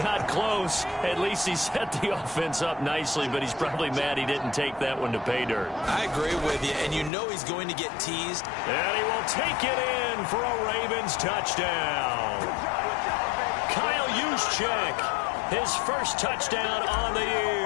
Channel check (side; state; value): right; drops out; at 7.1 s